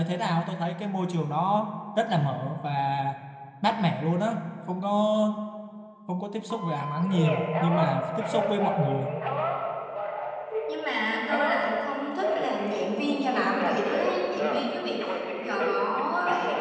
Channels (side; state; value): both; identical; correlation 1.00